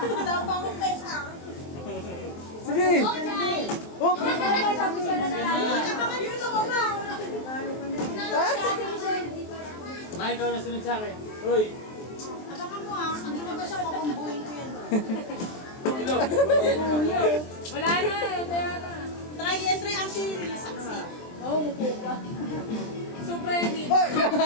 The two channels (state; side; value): late; right; 23 ms